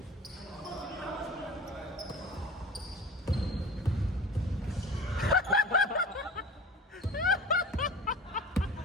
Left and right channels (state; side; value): normal; both; correlation 0.38